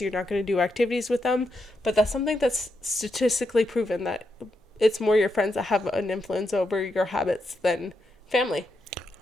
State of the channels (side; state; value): both; normal; correlation 0.83